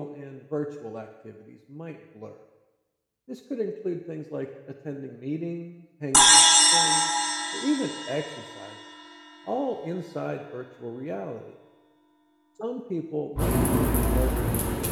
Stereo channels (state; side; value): identical; both; correlation 1.00